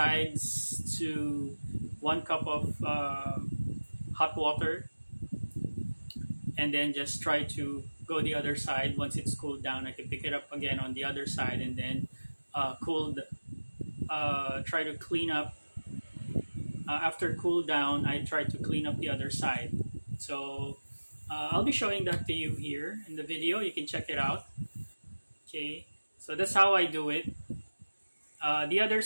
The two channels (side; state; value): both; inverted; correlation -1.00